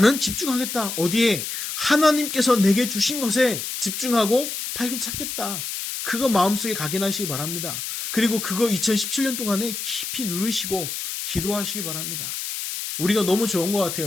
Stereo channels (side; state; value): left; noise; hiss, 5 dB below the sound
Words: 집중하겠다. 어디에? 하나님께서 내게 주신 것에 집중하고 발견 찾겠다. 그거 마음속에 각인하시기 바랍니다. 그리고 그거 2017년 동안에 깊이 누르시고 기도하시기 바랍니다. 우리가 너무 좋은 것